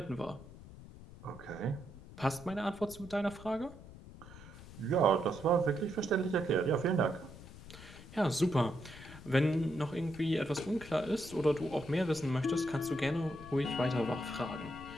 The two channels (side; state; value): left; noise; rumble, 16 dB below the sound